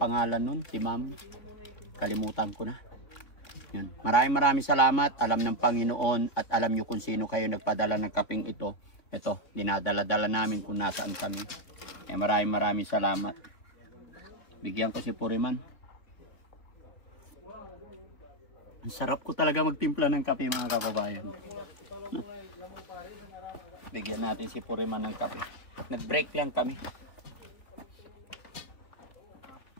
nun? Si Ma'am? Kalimutan ko na. Yun. Maraming salamat. Alam ng Panginoon at alam nyo kung sino kayo nagpadala ng kaping ito. Ito, dinadala-dala namin kung nasaan kami. Maraming salamat. Bigyan ko si Puriman. Ang sarap ko talaga magtimpla ng kape, mga kababayan. Bigyan natin si Puriman ng kape. Nag-break lang kami.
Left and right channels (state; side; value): late; right; 3.2 ms